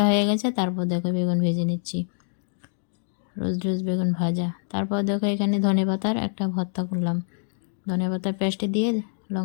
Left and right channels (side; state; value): right; silent; digital silence